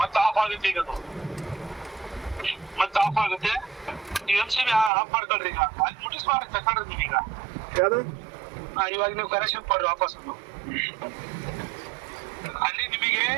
ಮತ್ತೆ ಆಫ್ ಆಗುತ್ತೆ. ಈಗ ಮತ್ತೆ ಆಫ್ ಆಗುತ್ತೆ. ನೀವು MCB ಆಫ್ ಮಾಡ್ಕೊಳ್ರಿ. ಈಗ ಅಲ್ಲಿ ಮುಟ್ಟಿಸ್ ಮಾಡಿ ತಗೊಂಡ್ರಿ ನೀವೀಗ. ಯಾವುದು? ಇವಾಗ ನೀವು ಕನೆಕ್ಷನ್ ಕೊಡ್ರಿ ವಾಪಸ್. ಅಲ್ಲಿ ನಿಮಗೆ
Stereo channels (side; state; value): left; drops out; at 4.9 s